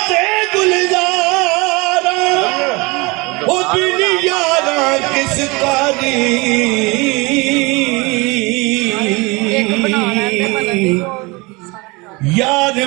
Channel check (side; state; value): left; quieter; 25.8 dB